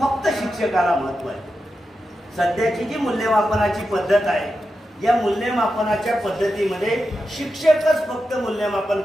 शिक्षकाला महत्व आहे. सध्याची जी मूल्यमापनाची पद्धत आहे या मूल्यमापनाच्या पद्धतीमध्ये शिक्षकच फक्त मूल्यमापन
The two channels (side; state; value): both; normal; correlation 0.89